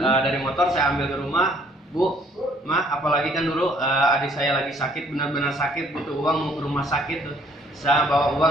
dari motor saya ambil ke rumah. Bu, Ma, apalagi kan dulu adik saya lagi sakit, benar-benar sakit, butuh uang mau ke rumah sakit tuh. Saya bawa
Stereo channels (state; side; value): normal; both; correlation 0.61